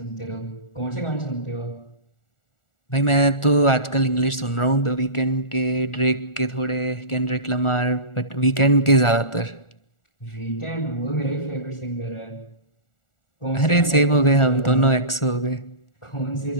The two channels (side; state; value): right; late; 1.4 ms